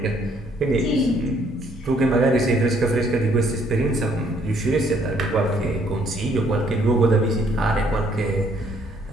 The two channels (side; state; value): both; normal; correlation 0.66